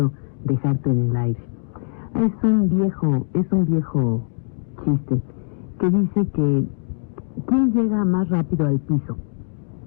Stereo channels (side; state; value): right; silent; digital silence